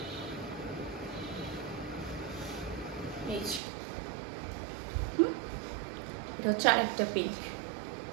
এটা হচ্ছে আরেকটা পিঙ্ক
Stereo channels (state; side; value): drops out; left; at 3.6 s